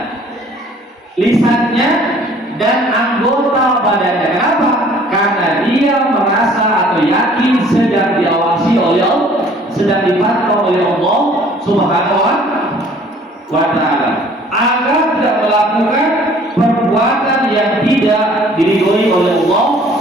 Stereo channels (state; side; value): normal; both; correlation 0.55